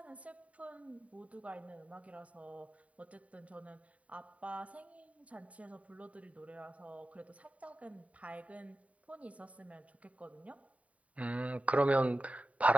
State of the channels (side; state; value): left; late; 0.067 ms